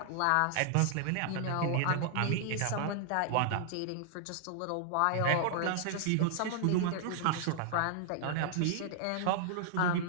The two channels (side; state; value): both; different; correlation -0.01